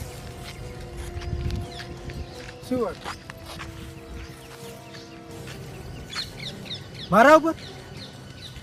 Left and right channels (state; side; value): identical; both; correlation 1.00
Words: શું વાત મારા ઉપર